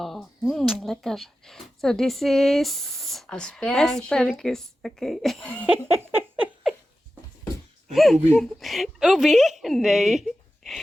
lekker. So this is Asperge. asparagus. Oké. Ubi. Ubi? Nee.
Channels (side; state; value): both; normal; correlation 0.93